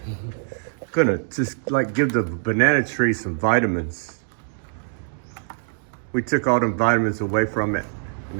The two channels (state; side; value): silent; left; digital silence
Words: gonna just like give the banana tree some vitamins. We took all them vitamins away from it, and